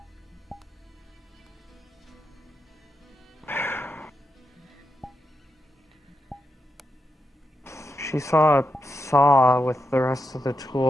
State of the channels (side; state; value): both; normal; correlation 0.86